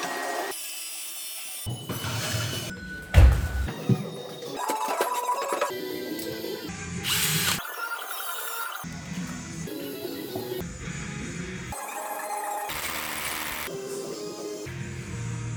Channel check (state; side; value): identical; both; correlation 1.00